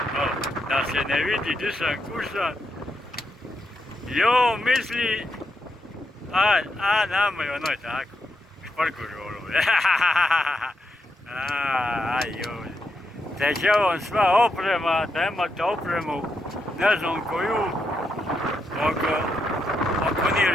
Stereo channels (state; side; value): normal; both; correlation 0.83